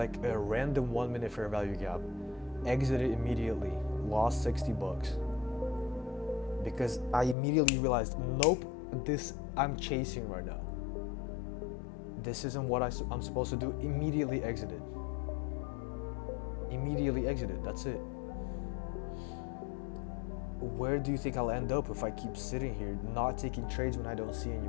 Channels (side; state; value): right; drops out; at 7.4 s